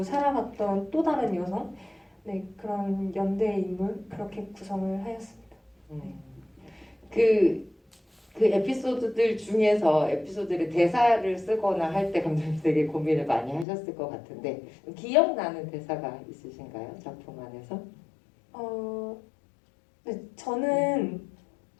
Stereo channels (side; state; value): right; drops out; at 13.7 s